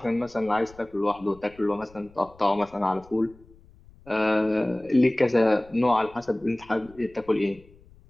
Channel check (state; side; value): noise; left; rumble, 26 dB below the sound